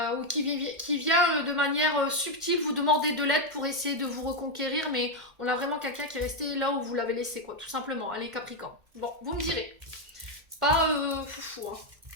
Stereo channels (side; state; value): left; late; 1.5 ms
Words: qui vient de manière subtile vous demander de l'aide pour essayer de vous reconquérir, mais on a vraiment quelqu'un qui est resté là où vous l'avez laissé, quoi, tout simplement. Allez, Capricorne. Bon, vous me direz. C'est pas foufou, hein.